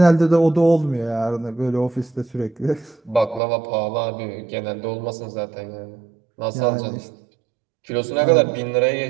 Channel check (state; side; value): drops out; left; at 3.4 s